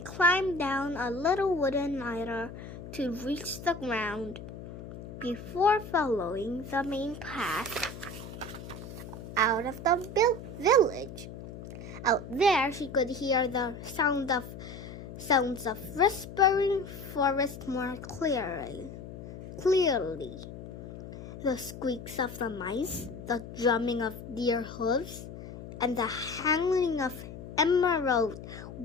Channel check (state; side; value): noise; left; hum, 12 dB below the sound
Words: climbed down a little wooden ladder to reach the ground before following the main path out of the village. Out there, she could hear the sounds of Whispering Forest more clearly. The squeaks of the mice, the drumming of deer hooves, and the howling of emerald